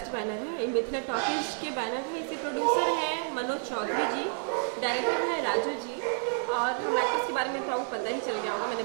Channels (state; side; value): silent; left; 58 dB below the other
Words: बैनर है, ये मिथिला टॉकीज के बैनर है। इसके प्रोड्यूसर हैं मनोज चौधरी जी, डायरेक्टर है राजू जी। और हम एक्टर्स के बारे में तो आपको पता ही चल गया होगा, मैंने